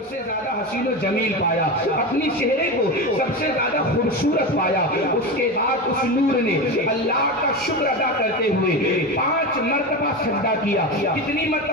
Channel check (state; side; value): normal; both; correlation 0.21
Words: سے زیادہ حسین و جمیل پایا، اپنی چہرے کو سب سے زیادہ خوبصورت پایا۔ اس کے بعد اس نور نے اللہ کا شکر ادا کرتے ہوئے 5 مرتبہ سجدہ کیا۔ کتنی